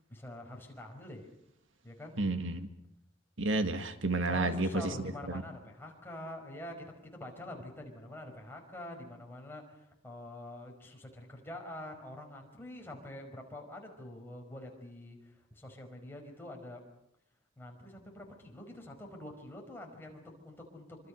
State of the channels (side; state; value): both; normal; correlation 0.46